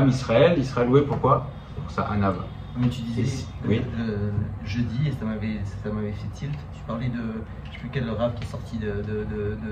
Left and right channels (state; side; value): identical; both; correlation 1.00